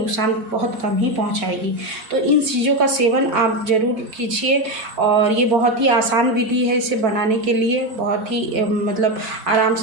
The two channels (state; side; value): late; left; 4.5 ms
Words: बहुत कम ही पहुंचाएगी। तो इन चीज़ों का सेवन आप ज़रूर कीजिए और ये बहुत ही आसान विधि है। इसे बनाने के लिए बहुत ही मतलब आराम